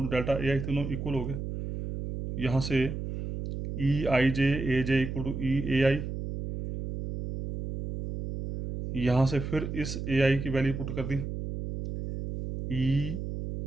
to delta a i, तीनों इक्वल हो गए. यहाँ से ई आई j a j equal to E a आई, यहाँ से फिर इस ए आई की वैल्यू पुट कर दी,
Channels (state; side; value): noise; right; hum, 6 dB below the sound